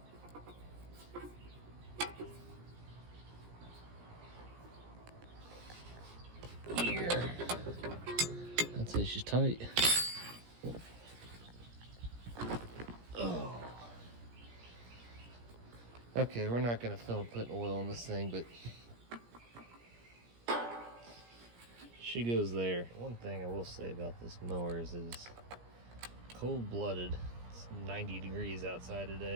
Here. That's it, she's tight. Oh. Okay, we're not gonna film putting oil on this thing, but she goes there. One thing I will say about this mower is it is cold-blooded. It's 90 degrees outside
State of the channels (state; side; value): late; left; 17 ms